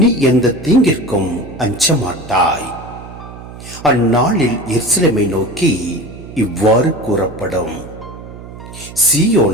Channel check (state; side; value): noise; right; hum, 15 dB below the sound